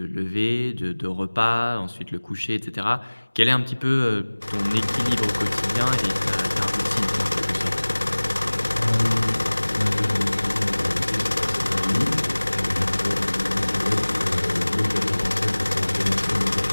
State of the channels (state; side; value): inverted; both; correlation -1.00